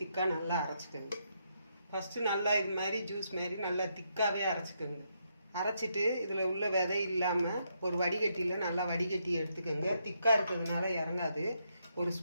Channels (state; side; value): inverted; both; correlation -0.78